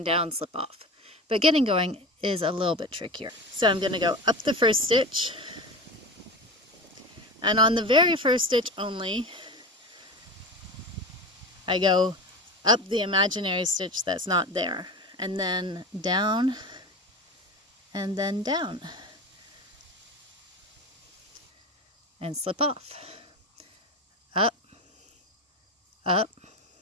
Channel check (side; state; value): both; normal; correlation 0.28